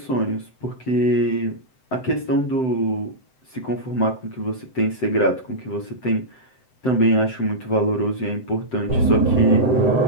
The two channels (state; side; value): late; right; 7.8 ms